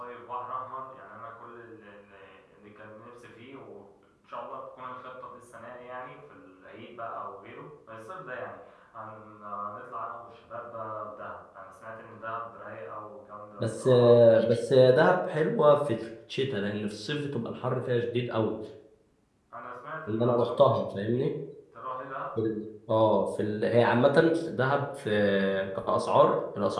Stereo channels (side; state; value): both; identical; correlation 1.00